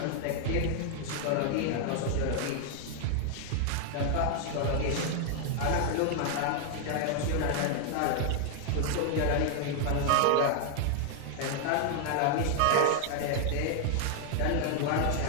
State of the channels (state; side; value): different; both; correlation 0.00